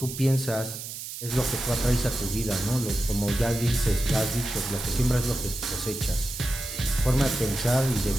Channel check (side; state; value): right; noise; hiss, 9 dB below the sound